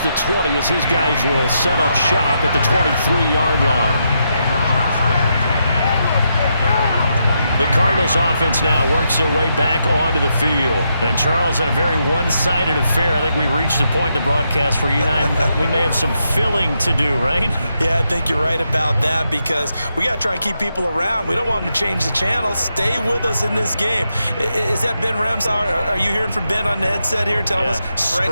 the 20 as his guys will set up shop at the 23-yard line. The Cardinals offense now works their way back onto the field. And Charles, in a very one-sided affair, I think we've reached the point in the broadcast where you and I, we may have some filling to do, right? Yeah, I think you're right about that because we got to try and keep people around. We don't want them to change the channel. Stay with us in this game. Is that Ben Ramsauer? Are you hearing from Ben on the headset here telling us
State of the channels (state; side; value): inverted; both; correlation -0.82